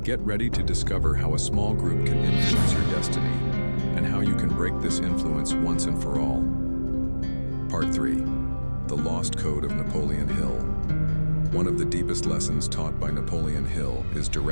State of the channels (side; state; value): both; inverted; correlation -1.00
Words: Get ready to discover how a small group can influence your destiny and how you can break this influence once and for all. Part 3. The Lost Code of Napoleon Hill. One of the deepest lessons taught by Napoleon Hill is